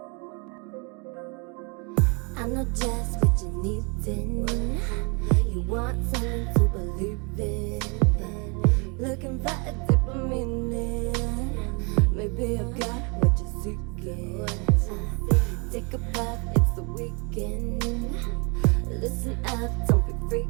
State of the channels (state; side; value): quieter; left; 32.4 dB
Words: I know just what you need in. You want something to believe in. Looking for a deeper meaning. Maybe I've got what you're seeking. Take a bath, it's the weekend. Listen up, don't be